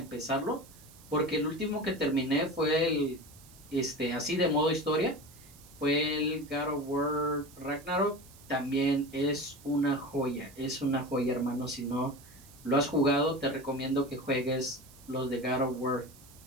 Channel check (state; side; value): noise; right; hiss, 23 dB below the sound